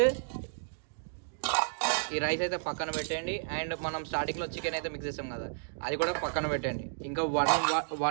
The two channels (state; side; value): silent; left; digital silence